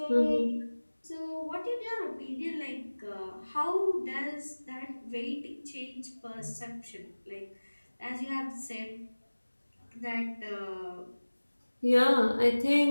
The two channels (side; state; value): both; inverted; correlation -1.00